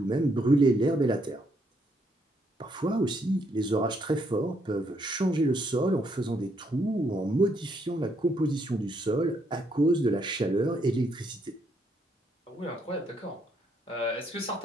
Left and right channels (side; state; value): both; normal; correlation 0.73